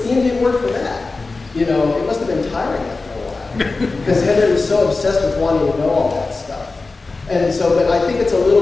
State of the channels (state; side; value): quieter; right; 3.7 dB